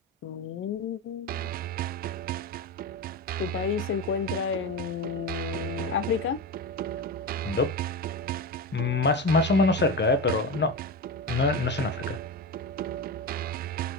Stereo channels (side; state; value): both; normal; correlation 0.22